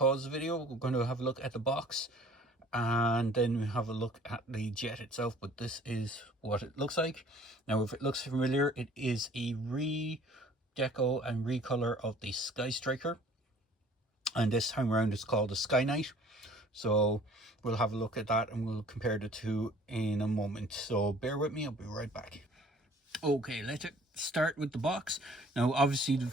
the video, we're going to have a look at the box, and then we have a look at the jet itself. But this is what it looks like. Now, if it looks familiar, it is a redeco and recolor of the Sky Striker, and this time around it's called the Sky Knight. So we'll have a look at that and we'll compare the two in a moment, so bear with me, I'll be right back. Okay, let's start with the box. Now, obviously the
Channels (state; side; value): normal; both; correlation 0.53